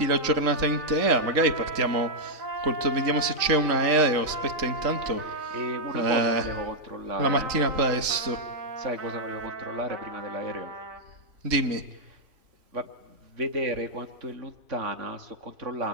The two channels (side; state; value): left; late; 3.7 ms